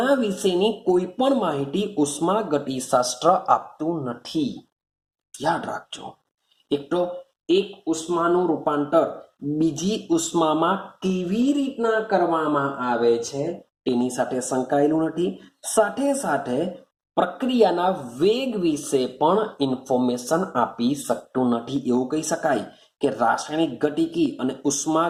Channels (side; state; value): both; identical; correlation 1.00